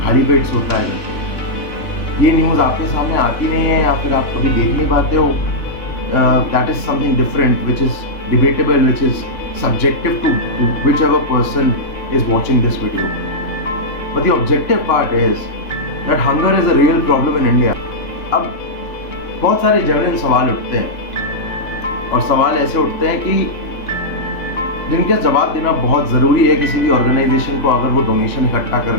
खाली पेट सोता है। ये न्यूज़ आपके सामने आती नहीं है या फिर आप कभी देख नहीं पाते हो। That is something different which is debatable, which is subjective to whichever person is watching this video. But the objective part is that hunger is a real problem in India. अब बहुत सारे जेन्युइन सवाल उठते हैं और सवाल ऐसे उठते हैं कि जिनका जवाब देना बहुत ज़रूरी है किसी भी ऑर्गेनाइजेशन को अगर वो डोनेशन इकट्ठा कर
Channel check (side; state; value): right; late; 2.9 ms